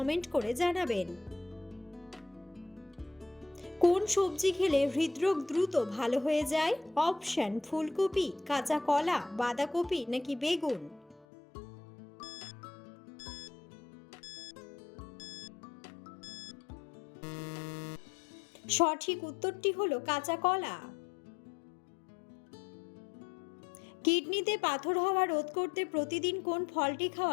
করে জানাবেন। কোন সবজি খেলে হৃদরোগ দ্রুত ভালো হয়ে যায়? অপশন: ফুলকপি, কাঁচা কলা, বাঁধাকপি নাকি বেগুন। সঠিক উত্তরটি হলো কাঁচা কলা। কিডনিতে পাথর হওয়া রোধ করতে প্রতিদিন কোন ফলটি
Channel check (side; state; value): right; drops out; at 11.2 s